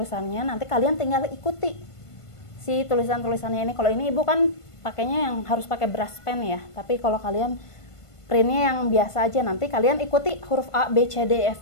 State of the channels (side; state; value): right; late; 1.5 ms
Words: nanti kalian tinggal ikuti si tulisannya ini. Kalau ini ibu kan pakainya yang harus pakai brush pen ya, tapi kalau kalian printnya yang biasa aja, nanti kalian ikuti huruf A, B, C, D,